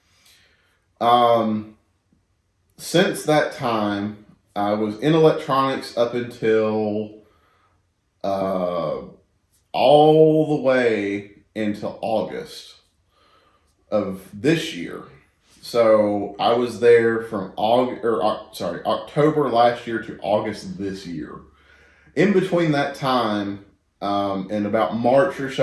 Since that time, I was in electronics up until all the way into August of this year. So I was there from October last year to August this year. In between that time, in about March or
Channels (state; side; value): identical; both; correlation 1.00